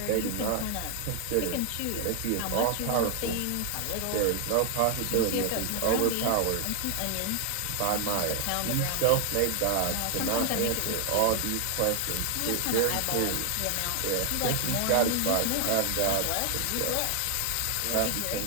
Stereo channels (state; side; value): different; both; correlation 0.00